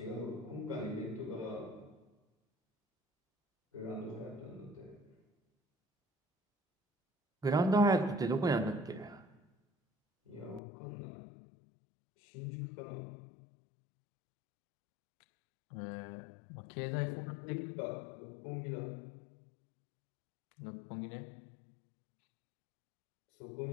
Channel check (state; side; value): drops out; right; at 10.6 s